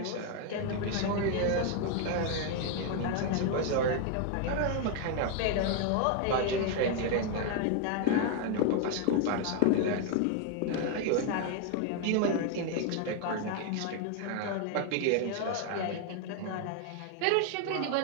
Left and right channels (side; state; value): both; different; correlation 0.01